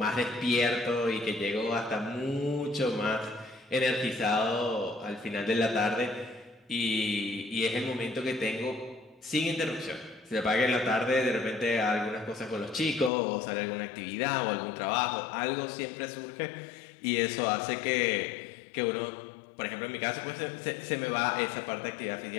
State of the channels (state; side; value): drops out; right; at 13.1 s